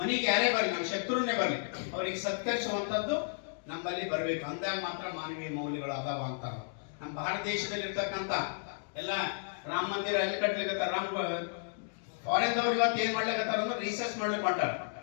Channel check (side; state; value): right; silent; digital silence